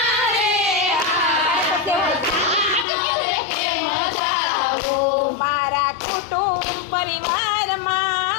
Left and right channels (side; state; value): right; drops out; at 2.9 s